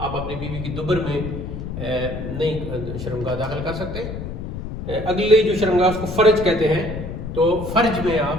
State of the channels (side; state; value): left; noise; rumble, 7 dB below the sound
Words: اپنی بیوی کی دبر میں نہیں شرمگاہ داخل کر سکتے. اگلی جو شرمگاہ اس کو فرج کہتے ہیں، تو فرج میں